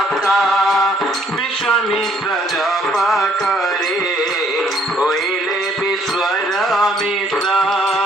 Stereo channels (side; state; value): both; normal; correlation 0.65